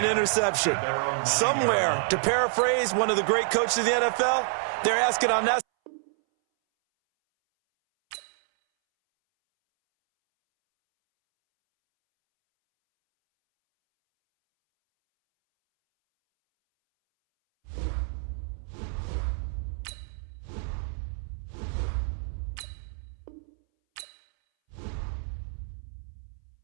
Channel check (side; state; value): left; silent; 59 dB below the other